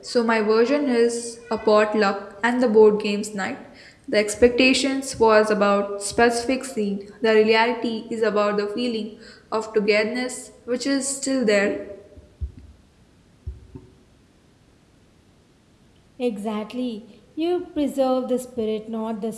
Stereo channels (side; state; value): both; identical; correlation 1.00